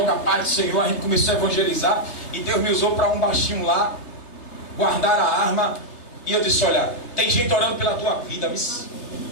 a paz do Senhor, a gente começou a evangelizar. E Deus me usou para um baixinho lá, guardar a arma. E eu disse: olha, tem gente orando pela tua vida,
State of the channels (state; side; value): late; right; 3.3 ms